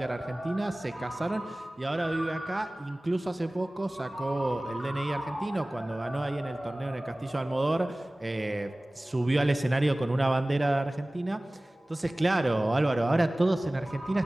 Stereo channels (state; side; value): normal; both; correlation 0.98